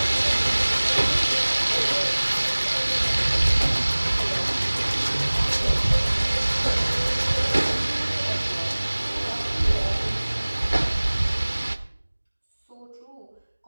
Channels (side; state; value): both; inverted; correlation -1.00